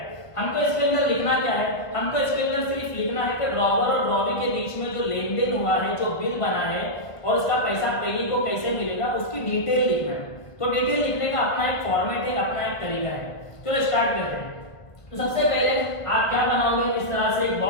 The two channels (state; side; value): late; right; 1.3 ms